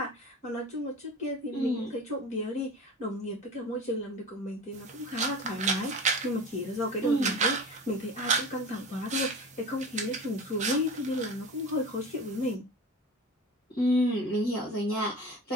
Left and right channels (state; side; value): normal; both; correlation 0.34